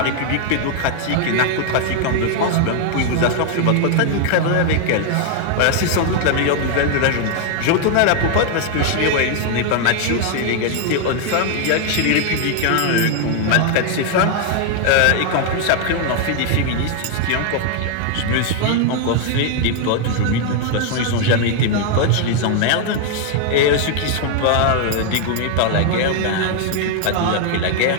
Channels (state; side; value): different; both; correlation 0.00